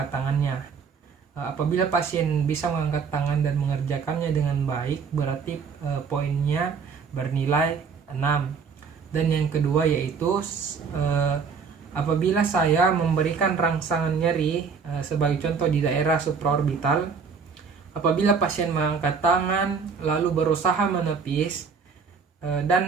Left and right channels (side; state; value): left; quieter; 5.7 dB